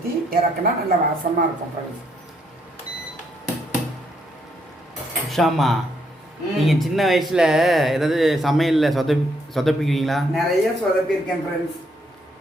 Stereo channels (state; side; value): normal; both; correlation 0.73